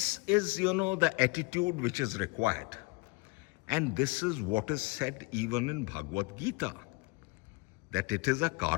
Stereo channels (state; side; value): quieter; right; 27.6 dB